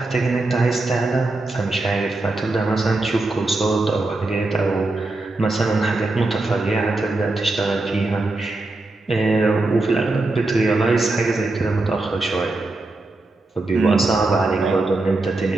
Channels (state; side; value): quieter; left; 3.0 dB